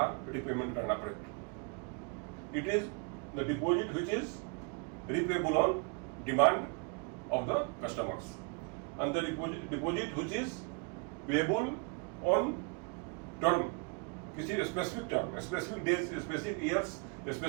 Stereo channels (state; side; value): quieter; left; 32.8 dB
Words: रिपेमेंट करना पड़े। It is the deposit which is repayable on demand of the customers, and the deposit which is payable on term किसी specific term, specific days, specific years,